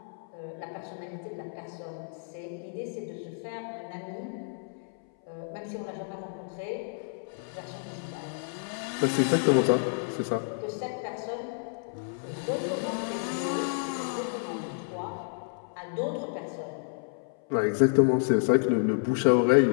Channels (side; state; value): right; silent; 58 dB below the other